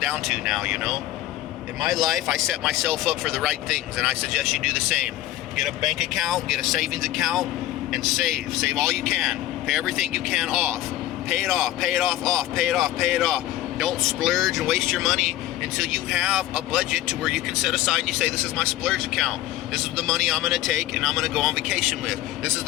to now, In my life, I set myself up for the right things. And I suggest you do the same. Get a bank account, get a savings account, and save. Save all you can. Pay everything you can off. Pay it off, pay it off, pay it off, pay it off. Don't splurge and waste your money until you have a budget to where you can set aside and you say, this is my splurge account. This is the money I'm going to take and I'm going to go on vacation with. This is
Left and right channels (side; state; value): right; quieter; 14.4 dB